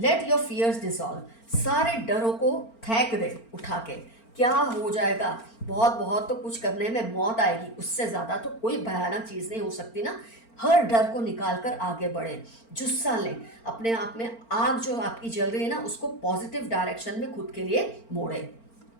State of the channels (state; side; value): late; right; 4.4 ms